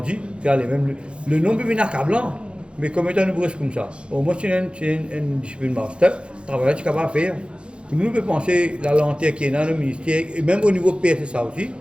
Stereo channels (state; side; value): late; left; 0.057 ms